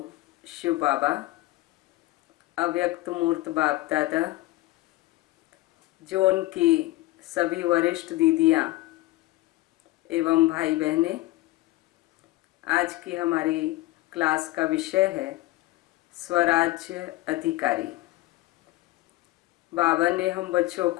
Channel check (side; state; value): right; quieter; 18.5 dB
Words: शिव बाबा, अव्यक्त मूर्त बाप दादा, जो उनकी सभी वरिष्ठ दीदियाँ एवं भाई बहनें, आज की हमारी क्लास का विषय है स्वराज्य अधिकारी। बाबा ने हम बच्चों